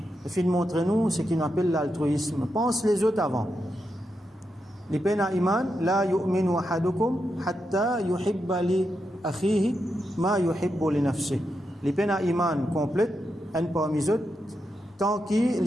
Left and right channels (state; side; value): normal; both; correlation 0.85